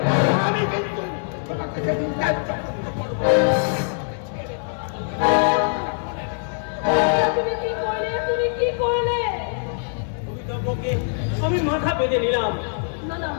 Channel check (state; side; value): silent; right; digital silence